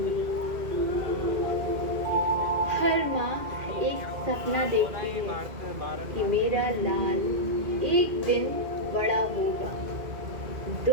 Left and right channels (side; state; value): left; late; 2.2 ms